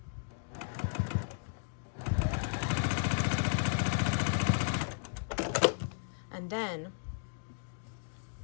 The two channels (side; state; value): right; silent; digital silence